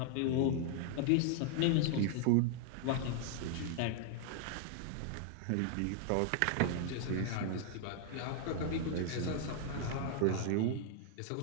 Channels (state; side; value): different; both; correlation 0.00